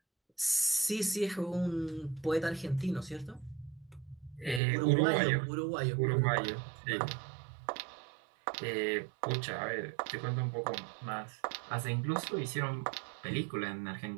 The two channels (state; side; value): drops out; left; at 4.6 s